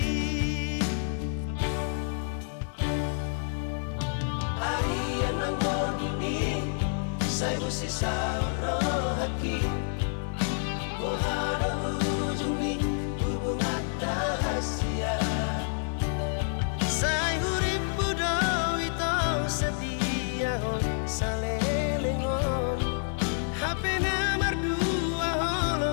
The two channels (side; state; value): right; silent; 58 dB below the other